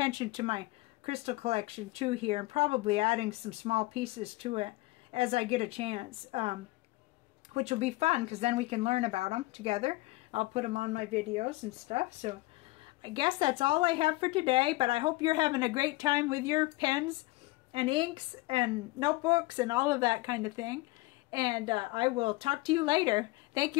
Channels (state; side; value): quieter; right; 21.3 dB